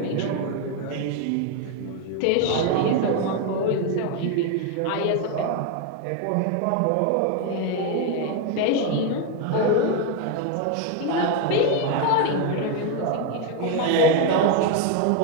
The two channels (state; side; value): different; both; correlation 0.02